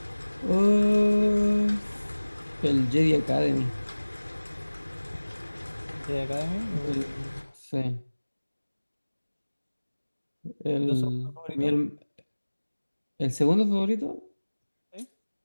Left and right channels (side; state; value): both; inverted; correlation -1.00